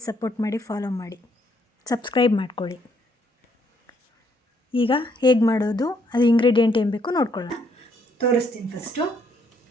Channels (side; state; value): both; normal; correlation 0.70